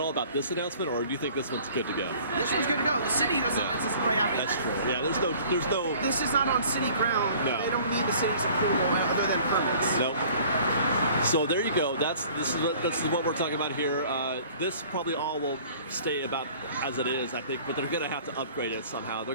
about this announcement, or do you think this one's good to go? This one's good to go. The city doesn't really have anything. That's true. Yeah, there's no. This is not on city ground. No. They don't need the city's approval other than permits. Nope. So there you go. This is what we're talking about here. This probably all will stay about as it is, I think, but they're going to have to upgrade it somehow. They're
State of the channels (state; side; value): inverted; both; correlation -0.51